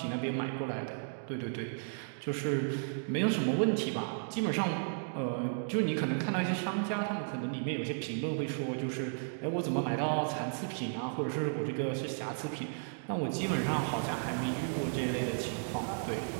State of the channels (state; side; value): silent; left; digital silence